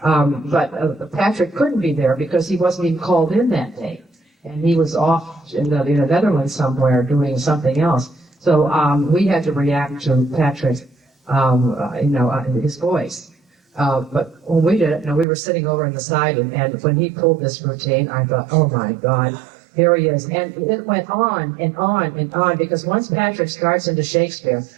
But Patrick couldn't be there because he wasn't even called in that day. And he was off in the Netherlands somewhere doing something else. So we had to react to Patrick, his voice. But when we did it, we were sitting over on the side, and when he pulled this routine, I thought, oh my God, here he is. And it went on and on and on, because once Patrick starts into Shakespeare,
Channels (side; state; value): left; drops out; at 15.2 s